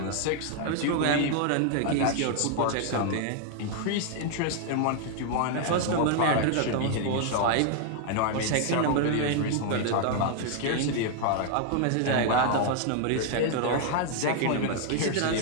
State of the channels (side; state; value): both; different; correlation 0.00